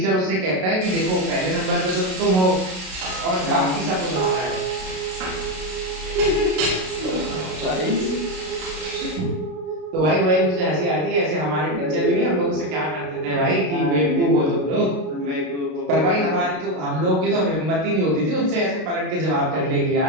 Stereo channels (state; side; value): late; left; 32 ms